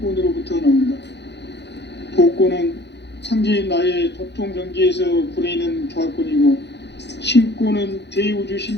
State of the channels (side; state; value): right; late; 0.50 ms